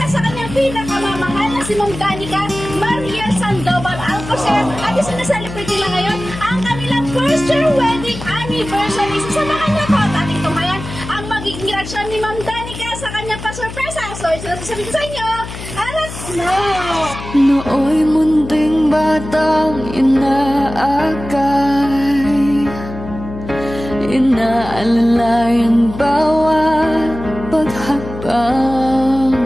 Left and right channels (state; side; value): noise; left; hum, 11 dB below the sound